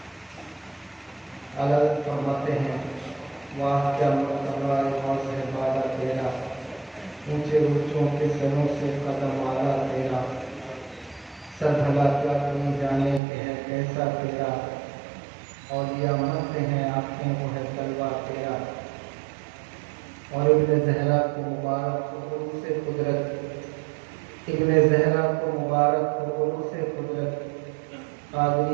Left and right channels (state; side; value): drops out; left; at 13.2 s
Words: اللہ فرماتے ہیں واہ کیا مرتبہ سے بالا تیرا، اونچے اونچوں کے سروں سے قدم والا تیرا. سر بھلا کیا کوئی جانے کہ ہے کیسا تیرا، اولیاء منتے ہیں آنکھیں وہ ہے تلوا تیرا. اور ابن زہرا کو مبارک کو عروس قدرت، ابن زہرا کو مبارک کو عروس قدرت،